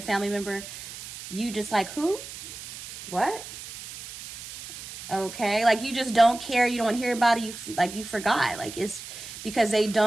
family member, you just like, who? What? Okay, like you just don't care, you don't hear about it, you forgot, like it's because they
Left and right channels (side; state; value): right; noise; hiss, 12 dB below the sound